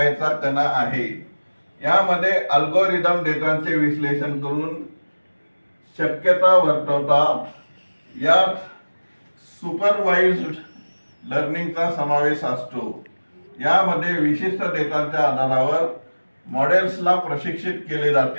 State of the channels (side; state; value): both; inverted; correlation -1.00